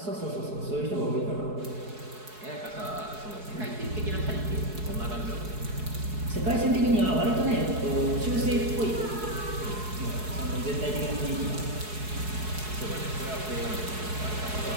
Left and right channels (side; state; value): left; late; 4.7 ms